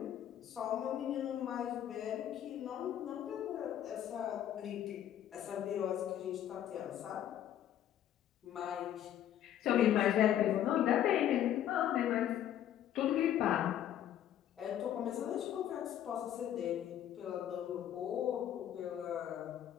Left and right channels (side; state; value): right; quieter; 11.0 dB